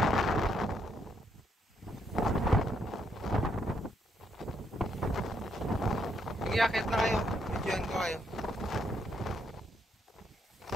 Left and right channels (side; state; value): both; normal; correlation 0.75